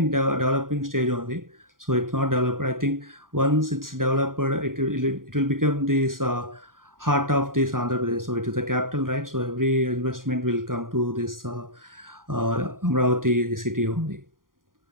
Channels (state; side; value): late; left; 0.91 ms